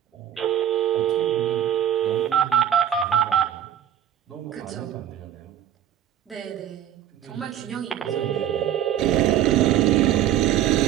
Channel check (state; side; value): quieter; left; 10.6 dB